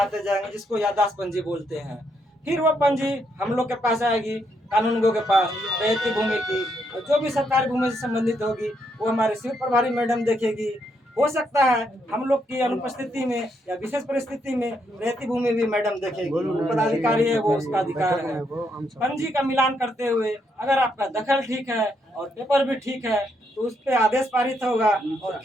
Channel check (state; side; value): normal; both; correlation 0.77